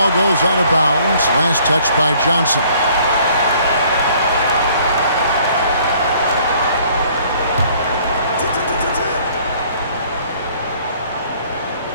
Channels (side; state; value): both; inverted; correlation -0.59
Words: goes out of bounds. Last touch by Johnson.